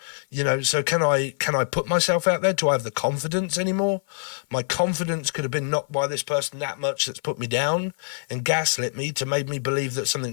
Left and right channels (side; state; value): right; silent; 56 dB below the other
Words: So can I put myself out there? Do I have the confidence anymore? My confidence could have been knocked by this person that much that's put me down and gaslit me to make me believe that